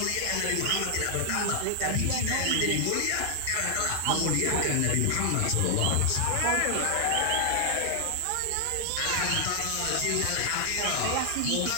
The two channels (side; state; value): both; different; correlation 0.00